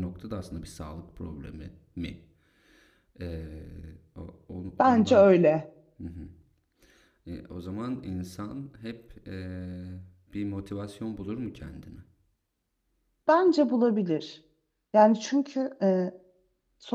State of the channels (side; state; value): both; identical; correlation 1.00